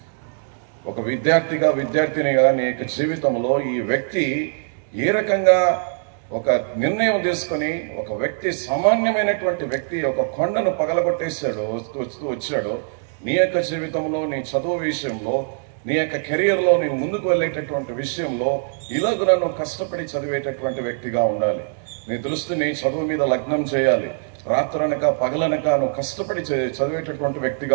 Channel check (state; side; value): silent; left; 64 dB below the other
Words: ఒక విద్యార్థినిగా నీ యొక్క జీవితంలో ఈ వ్యక్తి ఏ రకంగా ఒక నిర్ణయం తీసుకొని, ఒక వ్యక్తి, సామాన్యమైనటువంటి వ్యక్తి ఒక కొండను పగలగొట్టేశాడు, వచ్చాడు. నీ యొక్క జీవితంలో, నీ చదువు విషయంలో నీ యొక్క కెరియర్లో నీవు ముందుకు వెళ్ళేటటువంటి విషయంలో ఇలాగ నువ్వు కష్టపడి చదివేటటువంటి వ్యక్తిగా ఉండాలి. నీ దృష్టిని చదువు మీద లగ్నం చేయాలి. రాత్రనక పగలనక నువ్వు కష్టపడి చదివేటటువంటి